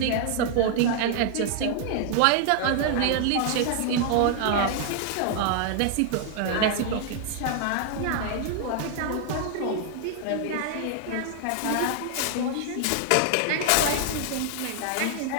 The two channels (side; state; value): both; different; correlation 0.00